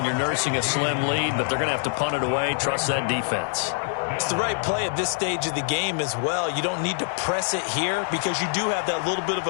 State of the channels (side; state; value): right; silent; digital silence